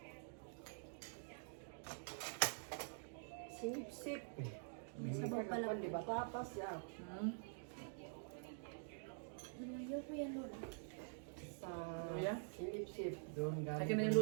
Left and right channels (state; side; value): silent; left; digital silence